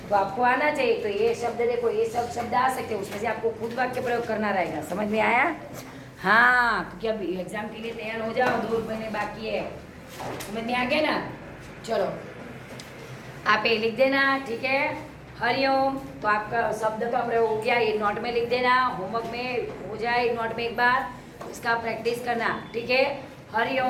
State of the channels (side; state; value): both; identical; correlation 1.00